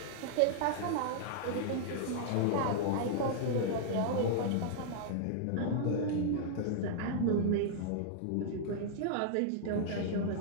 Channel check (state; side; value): different; both; correlation -0.01